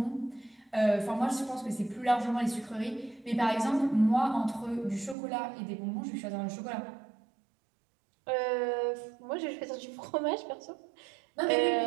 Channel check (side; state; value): left; drops out; at 5.2 s